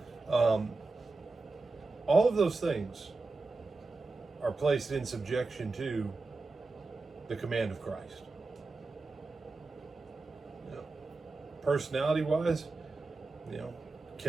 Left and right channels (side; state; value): left; quieter; 3.6 dB